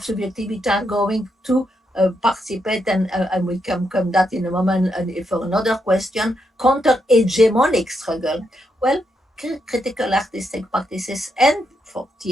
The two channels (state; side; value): normal; both; correlation 0.80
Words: subjectivity are going to participate, and we can come that in a moment for another question, counter-hegemonic struggle. Well, critical artistic practices and for